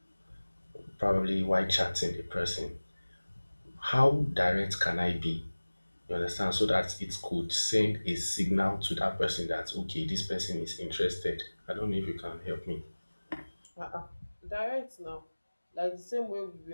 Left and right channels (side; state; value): both; inverted; correlation -1.00